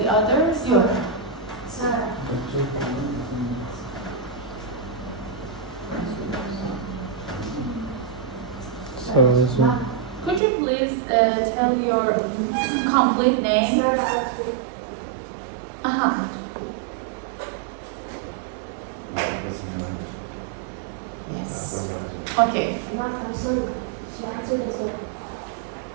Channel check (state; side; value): drops out; left; at 10.4 s